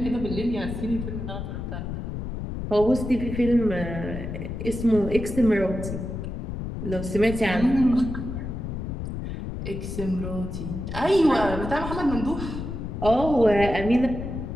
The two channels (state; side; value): noise; left; rumble, 6 dB below the sound